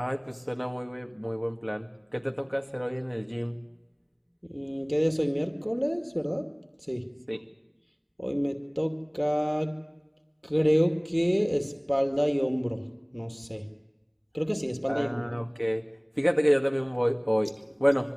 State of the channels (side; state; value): both; identical; correlation 1.00